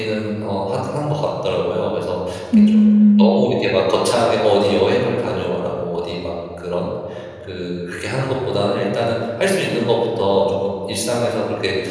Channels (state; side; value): identical; both; correlation 1.00